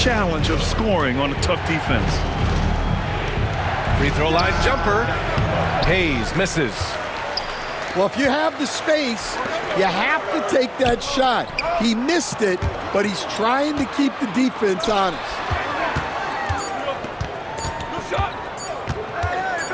of scoring on a tough defense. Free throw line jumper. Hayes misses. Well, if you have the space, you have to take that shot. He missed it, but he's trying to keep the defense honest.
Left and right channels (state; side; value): identical; both; correlation 1.00